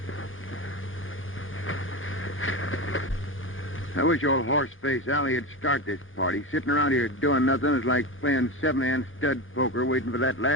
I wish old horse-face Allie would start this party. Sitting around here doing nothing is like playing seven-hand stud poker waiting for that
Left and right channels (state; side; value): normal; both; correlation 0.21